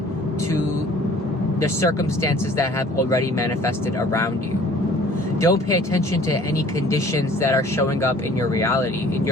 to the circumstances that have already manifested around you. Don't pay attention to any conditions that are showing up in your reality, in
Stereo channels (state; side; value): normal; both; correlation 0.52